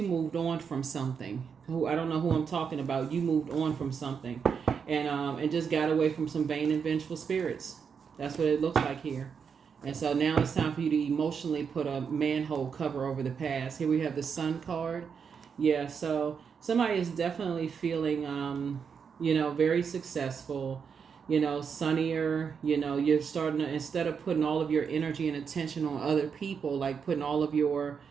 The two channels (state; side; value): quieter; left; 6.5 dB